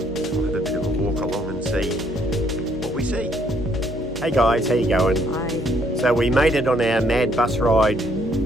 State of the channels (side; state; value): both; normal; correlation 0.67